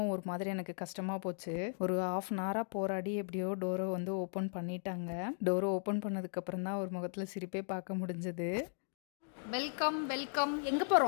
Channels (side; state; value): right; silent; digital silence